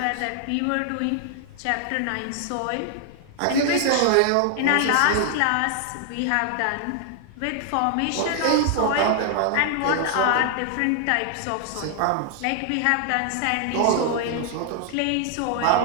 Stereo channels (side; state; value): both; different; correlation 0.00